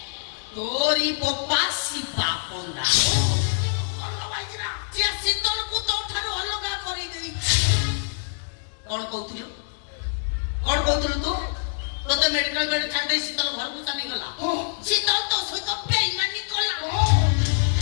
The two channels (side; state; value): right; silent; digital silence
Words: ତୋରି ବୋପା ଶିବା ପଣ୍ଡା। ସିଏ ଶୀତଳକୁ ତୋଠାରୁ ଅଲଗା କରିଦେଇଛି। କଣ କହୁଥିଲୁ ତୁ? ତୋତେ ମେଡିକାଲ ବେଡ୍ ଛାଡି ଶୀତଳ ଘରକୁ ଚାଲିଗଲା। ଶୀତଳ ତୋ ସହିତ ବେଇମାନି କଲା।